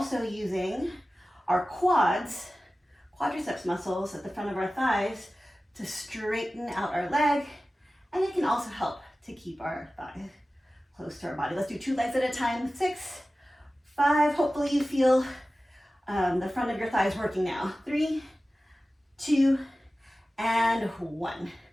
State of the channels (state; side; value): normal; both; correlation 0.96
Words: using our quads quadriceps muscles at the front of our thighs to straighten out our leg, and it can also help to keep our thigh close to our body. Let's do 2 legs at a time. 6, 5. Hopefully you feel the front of your thighs working now. 3, 2, and 1.